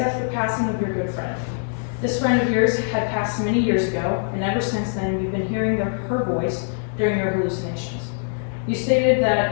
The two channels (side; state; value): right; silent; digital silence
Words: the passing of your good friend. This friend of yours had passed many years ago, and ever since then you've been hearing her voice during your hallucinations. You stated